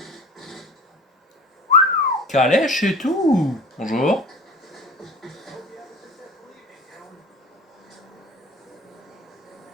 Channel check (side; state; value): both; normal; correlation 0.39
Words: Calèche et tout. Bonjour.